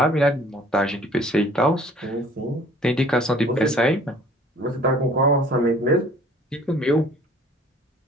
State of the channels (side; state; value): both; normal; correlation 0.53